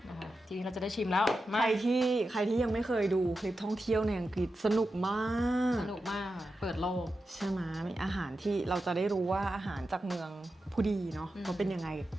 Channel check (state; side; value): normal; both; correlation 0.90